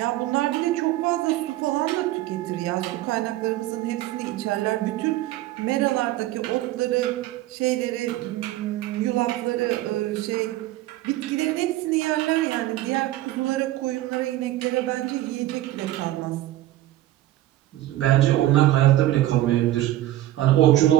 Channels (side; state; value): left; quieter; 15.1 dB